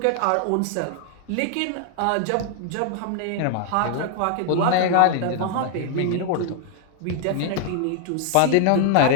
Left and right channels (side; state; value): both; different; correlation 0.00